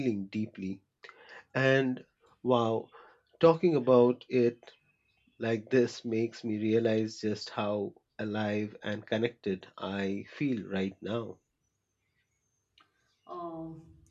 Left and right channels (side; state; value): both; identical; correlation 1.00